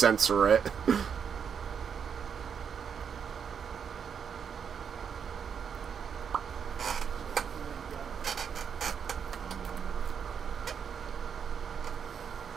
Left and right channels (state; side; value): quieter; left; 7.2 dB